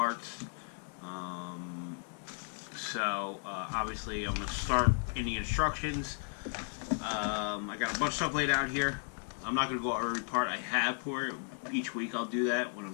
Obviously I'm going to start in the instructions. I got a bunch of stuff laid out here. I'm not going to go over every part I have for it. Each week I'll do that when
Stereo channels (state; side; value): silent; right; 55 dB below the other